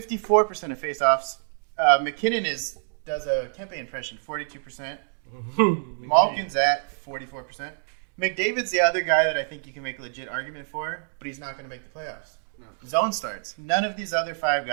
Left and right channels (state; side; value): silent; left; 58 dB below the other